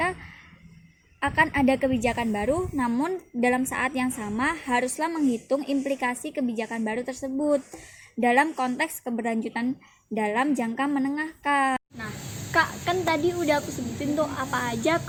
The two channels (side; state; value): both; identical; correlation 1.00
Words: akan ada kebijakan baru, namun dalam saat yang sama haruslah menghitung implikasi kebijakan baru tersebut dalam konteks keberlanjutan dalam jangka menengah, Kak. Nah, Kak, kan tadi udah aku sebutin tuh apa aja